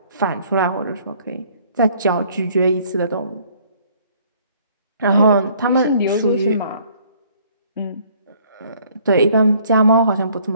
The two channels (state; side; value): inverted; both; correlation -0.59